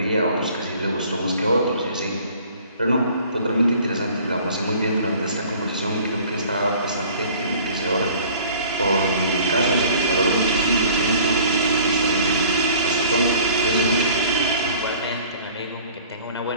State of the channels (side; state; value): both; inverted; correlation -0.50